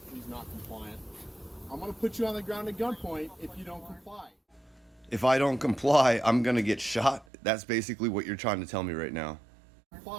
He's not compliant. I'm going to put you on the ground at gunpoint if you don't comply. If I don't comply, I'm gonna get shot. That's basically what you're trying to tell me right now.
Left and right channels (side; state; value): left; drops out; at 7.2 s